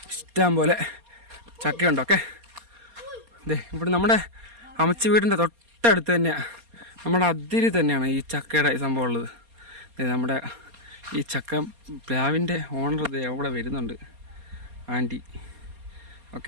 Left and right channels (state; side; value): late; left; 4.2 ms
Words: ഇഷ്ടം പോലെ ചക്കയുണ്ട്. ഓക്കെ, ഇതേ ഇവിടെ നമ്മുടെ അമ്മച്ചി വീടിൻ്റെ തൊട്ടടുത്ത് തന്നെയാണ്, നമ്മുടെ അതിരി തന്നെയാണ് ഈ ചക്കയുടെ സംഭവം ഉള്ളത്. നമ്മുടെ ഈ ചക്ക പ്ലാവിൻ്റെ ഓണർ ഇത് അവിടെ വരുന്നുണ്ട്, ആൻറ്റി.